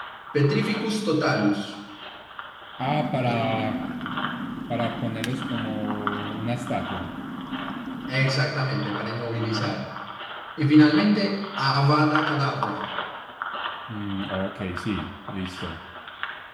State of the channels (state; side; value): identical; both; correlation 1.00